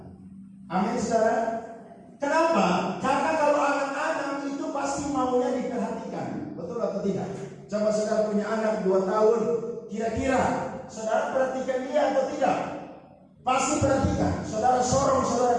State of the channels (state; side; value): identical; both; correlation 1.00